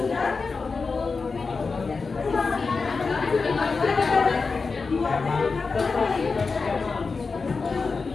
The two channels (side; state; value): right; quieter; 4.5 dB